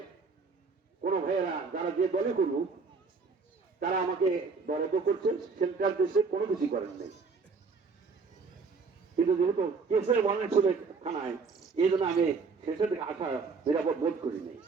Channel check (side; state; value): left; quieter; 4.7 dB